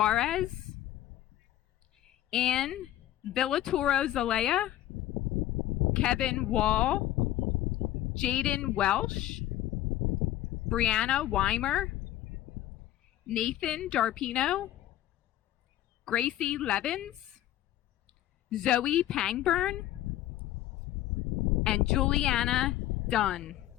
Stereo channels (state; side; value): quieter; right; 13.6 dB